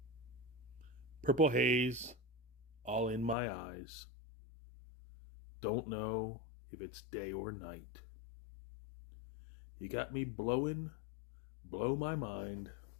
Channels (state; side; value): drops out; right; at 3.4 s